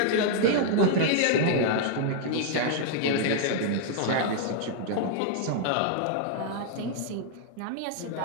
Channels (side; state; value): both; different; correlation -0.01